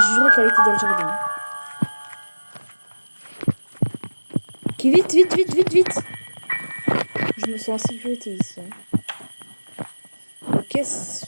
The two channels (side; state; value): both; inverted; correlation -1.00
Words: qu'elle était dans le jardin. Qui vite, vite, vite, vite, vite. Je me sens en sécurité ici. Ok.